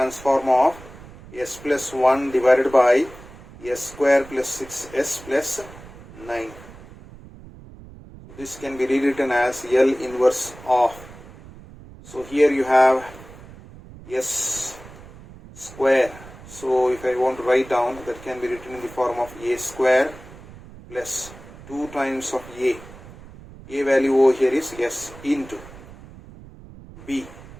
of s plus 1 divided by s square plus 6s plus 9. So this can be rewritten as L inverse of. So here you have s square. So if I want to write down, that can be written in the form of a square plus 2 times of a. A value over here is s into b.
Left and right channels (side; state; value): right; noise; rumble, 18 dB below the sound